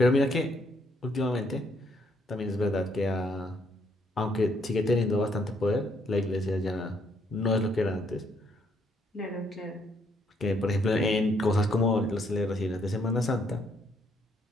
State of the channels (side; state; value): both; normal; correlation 0.70